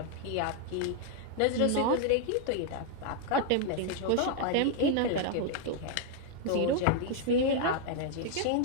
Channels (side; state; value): both; different; correlation 0.00